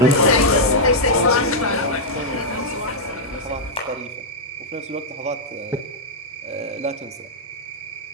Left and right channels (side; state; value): both; normal; correlation -0.06